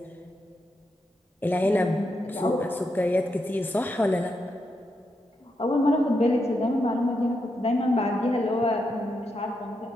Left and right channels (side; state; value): both; normal; correlation 0.83